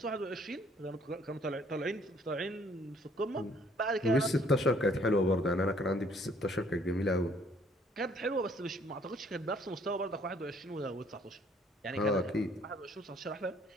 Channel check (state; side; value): normal; both; correlation 0.62